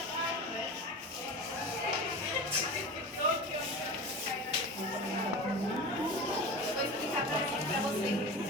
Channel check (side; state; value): both; normal; correlation 0.31